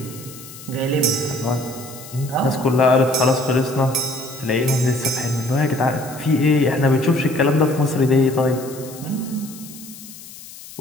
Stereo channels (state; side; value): noise; left; hiss, 16 dB below the sound